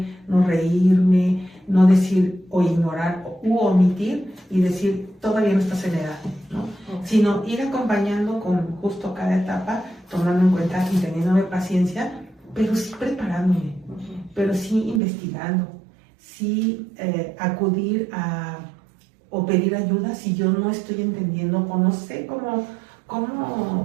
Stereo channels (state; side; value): drops out; left; at 15.0 s